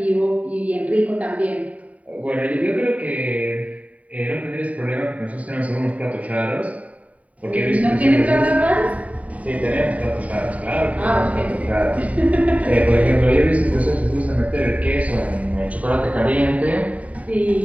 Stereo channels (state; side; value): late; left; 0.069 ms